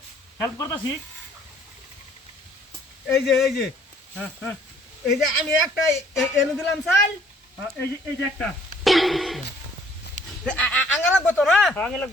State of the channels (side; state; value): both; normal; correlation 0.60